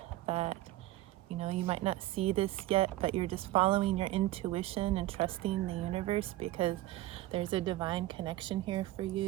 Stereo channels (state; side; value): quieter; left; 16.3 dB